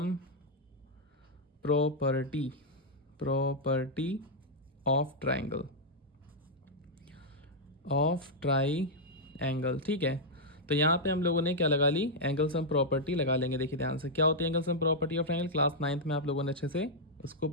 property of triangle, ठीक है। तो यहाँ पे हम लोगों ने क्या लगा ली, एंगल सम प्रॉपर्टी लगा लेंगे। देखिए ध्यान से, क्या होती है angle sum property of triangle, class 9th में आप लोगों ने अच्छे से उसको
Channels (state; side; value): normal; both; correlation -0.05